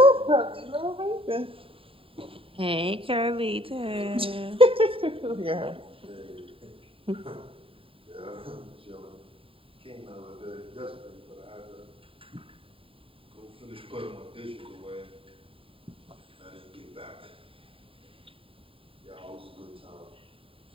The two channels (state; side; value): late; left; 0.27 ms